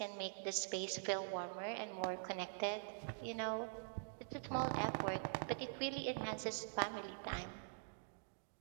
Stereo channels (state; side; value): silent; left; digital silence